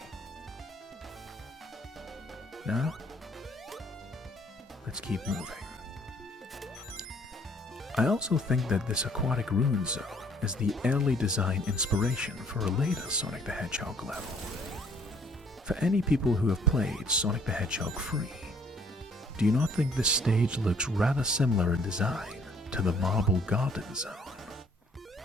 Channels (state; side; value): normal; both; correlation 0.61